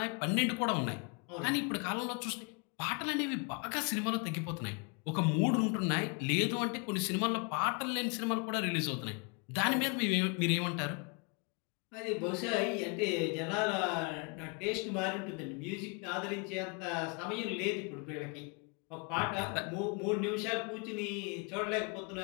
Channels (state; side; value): quieter; right; 34.2 dB